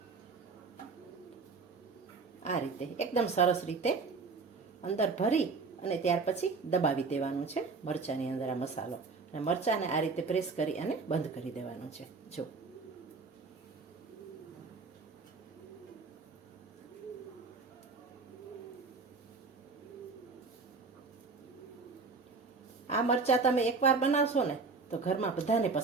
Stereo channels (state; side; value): quieter; left; 4.4 dB